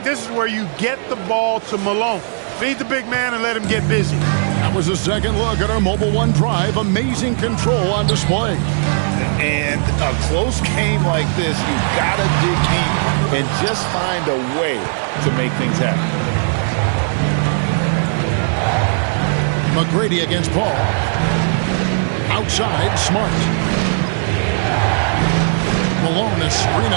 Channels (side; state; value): left; silent; digital silence